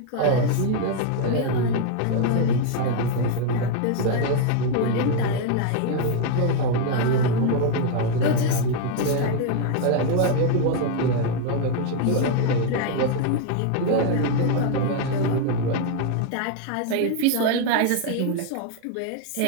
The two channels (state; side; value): different; both; correlation 0.01